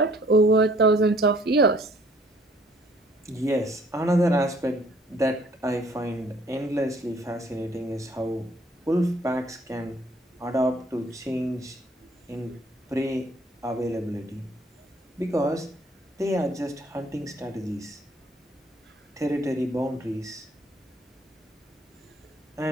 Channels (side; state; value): both; normal; correlation 0.59